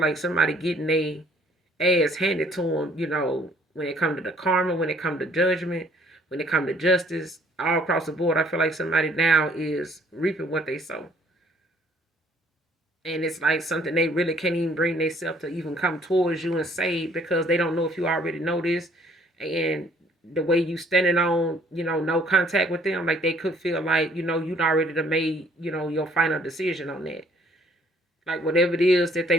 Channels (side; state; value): both; normal; correlation 0.61